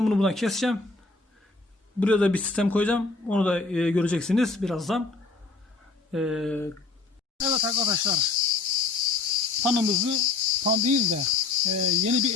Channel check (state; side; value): quieter; right; 3.8 dB